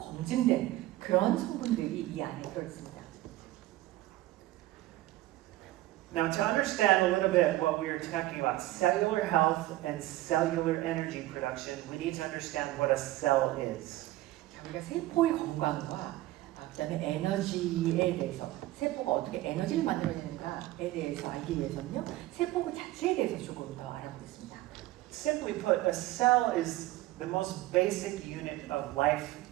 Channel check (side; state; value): left; quieter; 16.6 dB